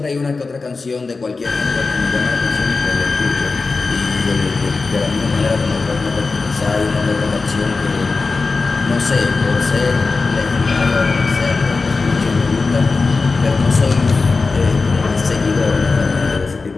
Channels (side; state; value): right; quieter; 4.1 dB